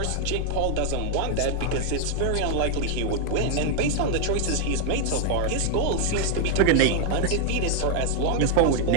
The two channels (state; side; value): different; both; correlation 0.00